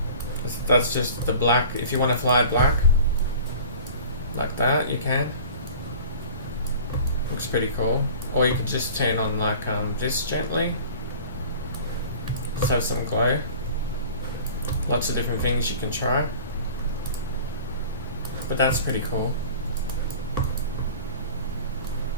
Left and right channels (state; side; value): inverted; both; correlation -0.41